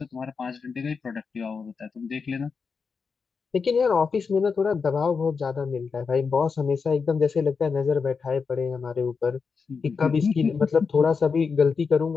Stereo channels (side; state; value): right; quieter; 5.3 dB